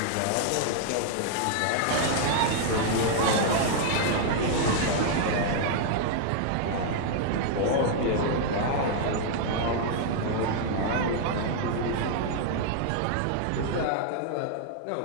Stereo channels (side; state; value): both; different; correlation -0.01